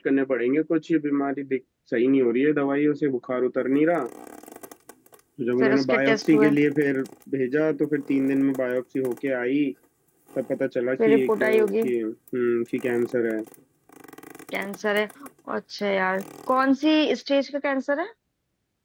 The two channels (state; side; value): identical; both; correlation 1.00